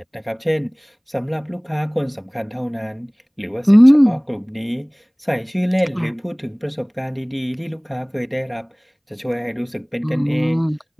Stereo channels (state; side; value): identical; both; correlation 1.00